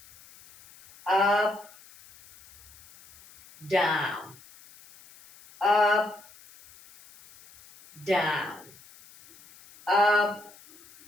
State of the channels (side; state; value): left; noise; hiss, 24 dB below the sound